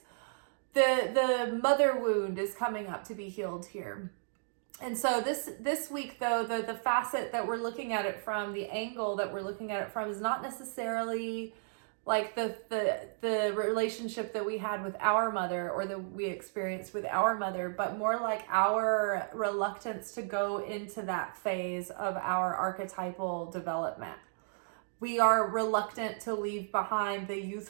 the mother wound is coming up to be healed here. And so this week, though, the facet that we're looking at it from, the angle that we're looking at it from, is not necessarily like the relationship that we had with our mother or that we experienced with our mother, but more like our reluctance to go into that phase of our archetypal development. We are reluctant to leave behind the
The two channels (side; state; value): left; silent; digital silence